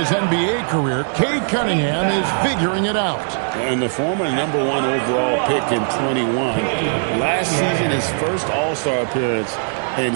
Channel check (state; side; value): silent; left; digital silence